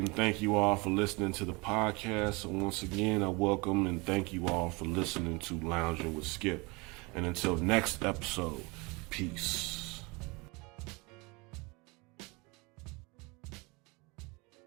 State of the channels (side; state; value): left; quieter; 26.7 dB